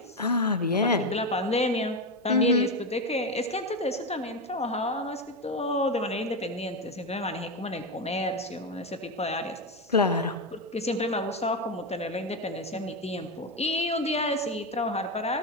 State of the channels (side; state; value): both; normal; correlation 0.11